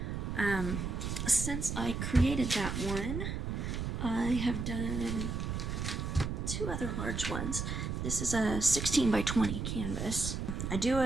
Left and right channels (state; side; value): noise; right; rumble, 3 dB below the sound